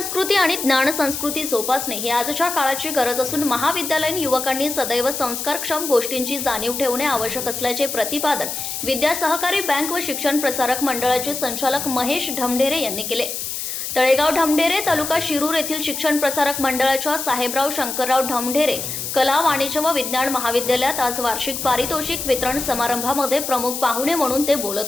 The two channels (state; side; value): noise; left; hiss, 5 dB below the sound